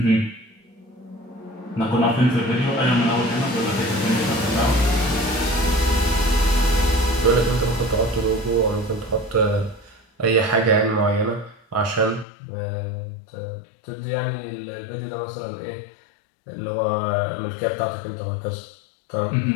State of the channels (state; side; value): drops out; right; at 12.2 s